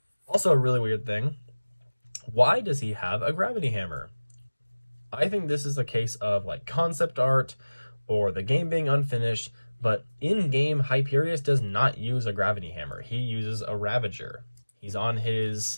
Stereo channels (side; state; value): both; inverted; correlation -1.00